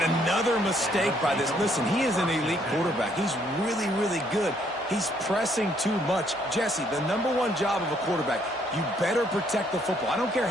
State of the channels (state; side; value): normal; both; correlation 0.68